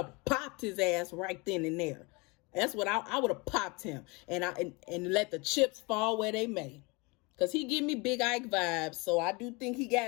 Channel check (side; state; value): right; quieter; 27.5 dB